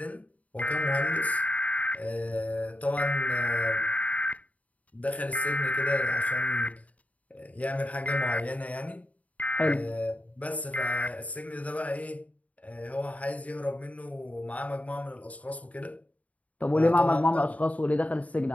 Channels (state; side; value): late; right; 0.070 ms